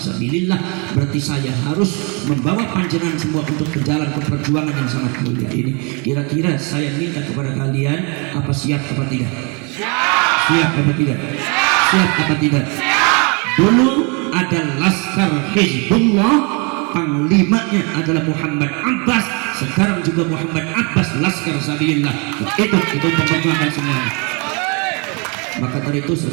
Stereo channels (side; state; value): left; quieter; 32.8 dB